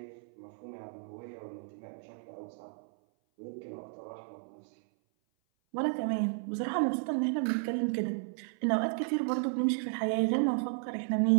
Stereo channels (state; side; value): silent; left; 56 dB below the other